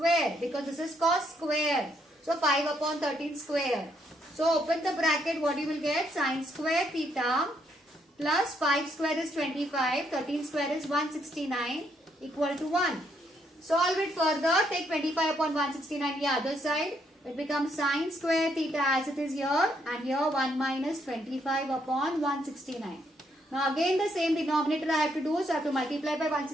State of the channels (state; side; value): normal; both; correlation 0.73